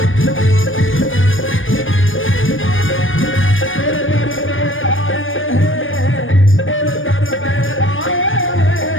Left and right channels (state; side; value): late; right; 0.58 ms